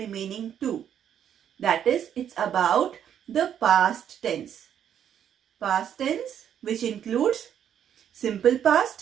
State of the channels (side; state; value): left; quieter; 9.4 dB